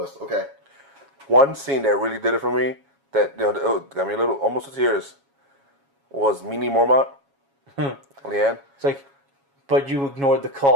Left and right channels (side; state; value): left; late; 7.2 ms